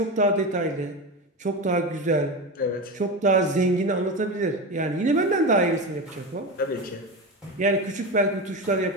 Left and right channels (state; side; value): normal; both; correlation 0.21